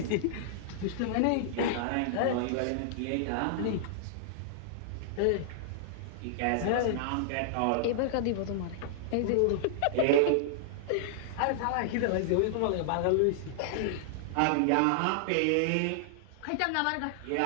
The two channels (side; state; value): both; different; correlation -0.01